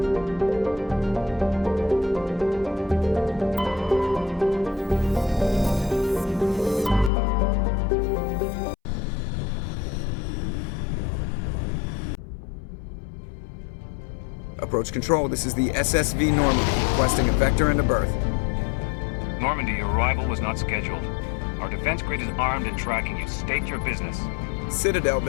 Approach control, this is the SSV Normandy, requesting a vector and a berth. Normandy, your arrival was not scheduled. Our defense grid is armed and tracking you. State your business. Citadel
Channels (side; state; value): right; drops out; at 7.1 s